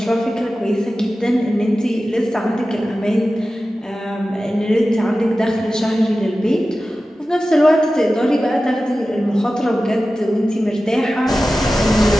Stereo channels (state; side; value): normal; both; correlation 0.94